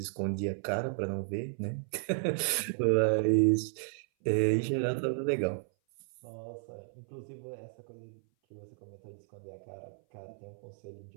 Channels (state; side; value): silent; left; 55 dB below the other